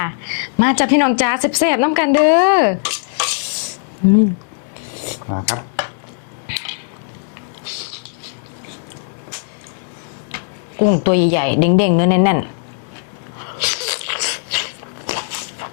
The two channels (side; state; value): right; silent; 67 dB below the other